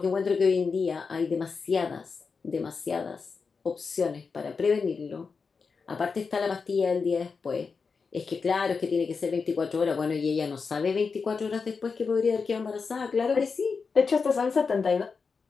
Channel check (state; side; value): quieter; right; 5.1 dB